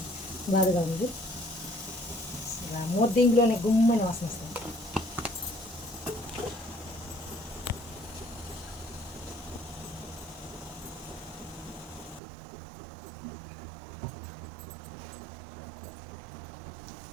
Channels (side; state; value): left; drops out; at 12.2 s